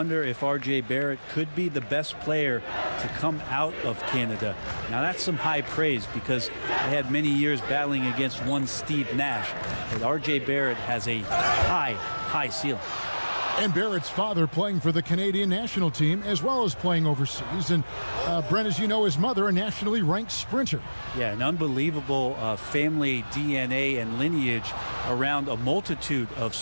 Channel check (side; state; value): both; inverted; correlation -1.00